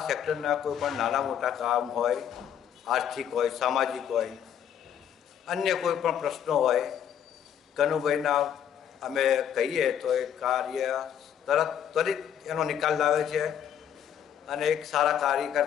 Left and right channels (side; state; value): right; quieter; 9.3 dB